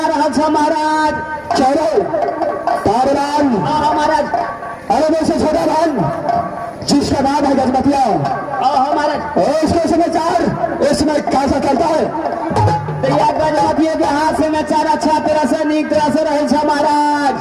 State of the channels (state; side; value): identical; both; correlation 1.00